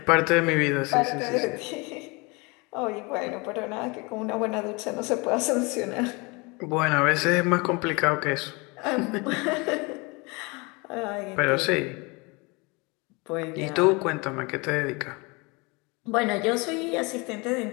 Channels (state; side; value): quieter; right; 27.6 dB